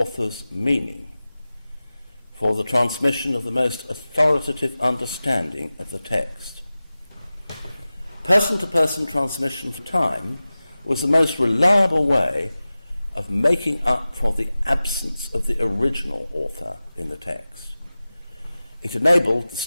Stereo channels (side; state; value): both; inverted; correlation -0.96